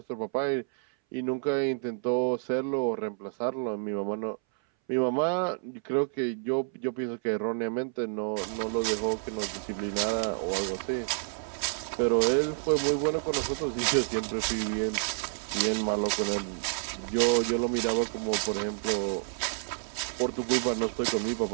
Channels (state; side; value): silent; left; 58 dB below the other